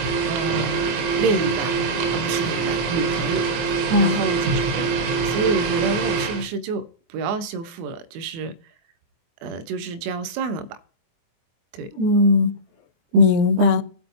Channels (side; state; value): left; late; 24 ms